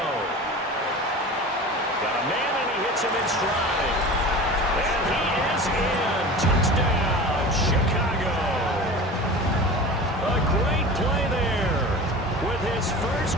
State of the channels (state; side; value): normal; both; correlation 0.35